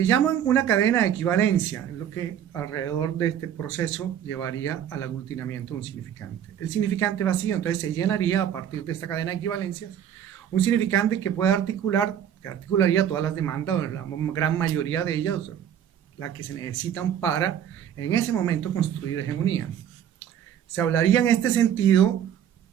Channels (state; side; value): quieter; left; 9.6 dB